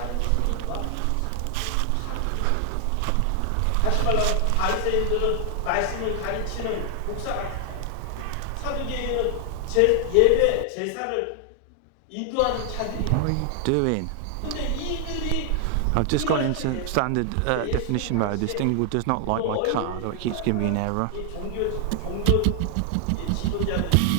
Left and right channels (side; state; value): both; different; correlation 0.00